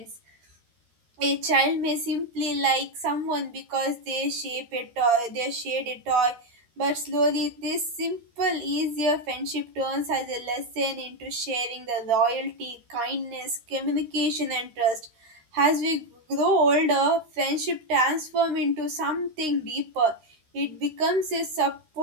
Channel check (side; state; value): left; late; 13 ms